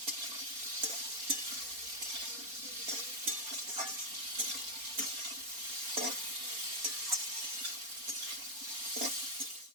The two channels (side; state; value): left; late; 4.3 ms